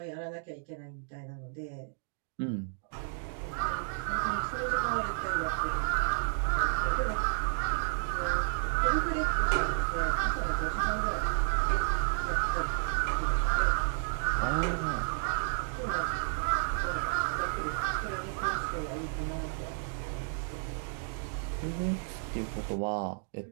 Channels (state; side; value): silent; left; digital silence